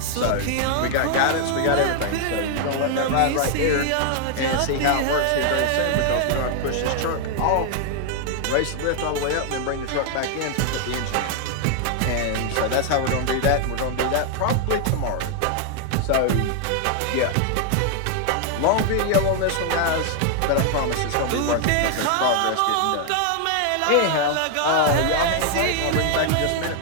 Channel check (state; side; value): different; both; correlation 0.00